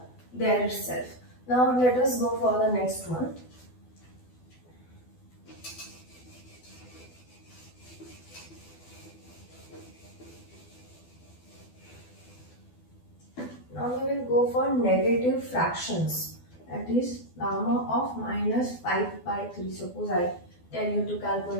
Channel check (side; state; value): right; late; 12 ms